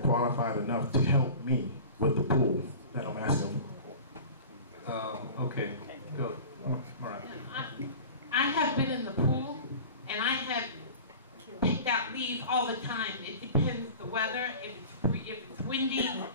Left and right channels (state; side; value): inverted; both; correlation -0.38